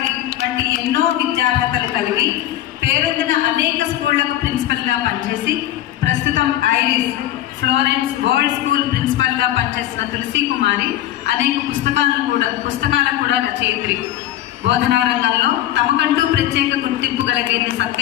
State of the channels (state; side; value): quieter; right; 13.3 dB